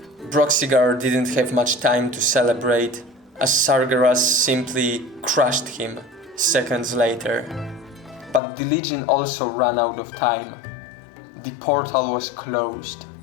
Broxigar didn't have much time to celebrate, as Sargeras simply crushed him seconds later. But the Legion also ran out of time. The portal was closed.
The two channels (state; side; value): drops out; right; at 8.4 s